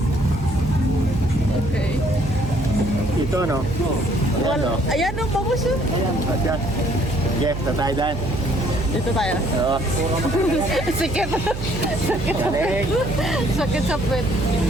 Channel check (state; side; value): noise; right; hum, 7 dB below the sound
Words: Okay. Ito, no? Ayan, no? Ayan o, bangus yun. At yan. Sige, tatay dahil. Dito tayo. Oo. Sikit. Galing. Sakit sa puwet.